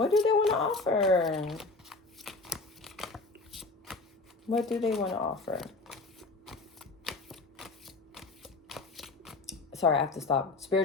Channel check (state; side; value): quieter; right; 3.5 dB